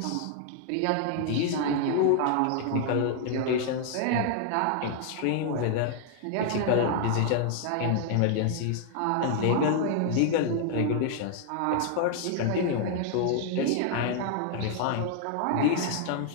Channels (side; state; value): both; different; correlation 0.00